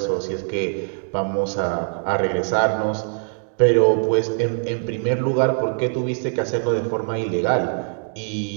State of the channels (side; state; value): left; silent; 64 dB below the other